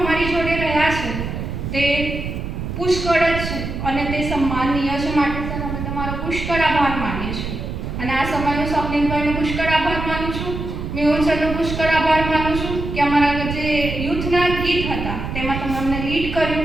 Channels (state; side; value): noise; right; rumble, 5 dB below the sound